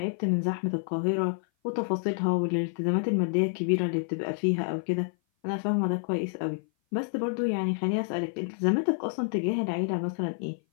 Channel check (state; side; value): silent; right; 56 dB below the other